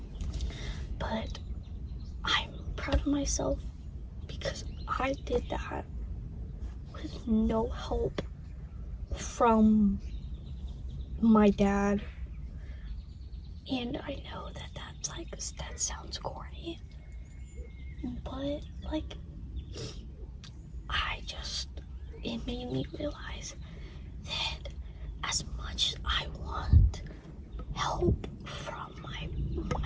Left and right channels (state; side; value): identical; both; correlation 1.00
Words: But I'm proud of myself because I did that with no help from my dad. And I know that sounds corny, but like, it made me realize that as much as I want help from